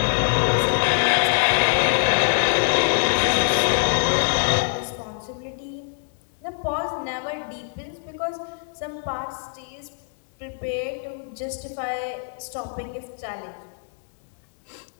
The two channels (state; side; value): silent; right; 62 dB below the other